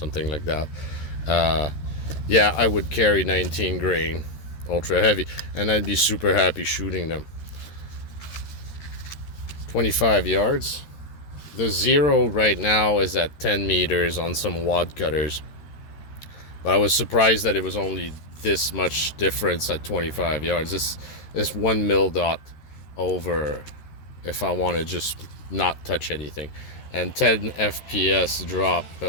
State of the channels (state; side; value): late; right; 13 ms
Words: like that, yeah, I would carry 19 grain ultra heavy, and I'd be super happy shooting them. 25 yards. The zero right now is at 10 meters on some wad cutters, but I was surprised that it was only this much difference at 25 yards. This 1 mil dot over if I want to just not touch anything. And 10 FPS drop.